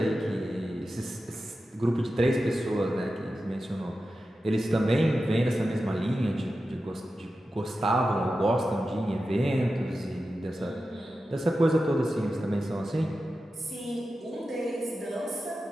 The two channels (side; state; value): both; normal; correlation 0.92